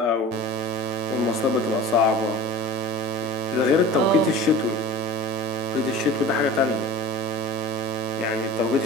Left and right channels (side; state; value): both; normal; correlation 0.37